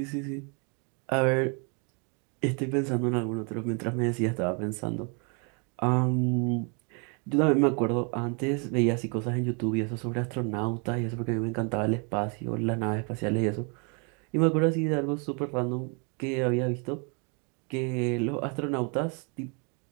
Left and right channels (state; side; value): quieter; left; 35.8 dB